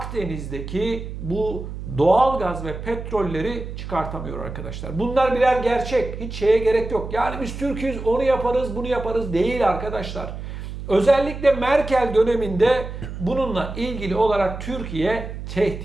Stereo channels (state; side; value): noise; right; hum, 9 dB below the sound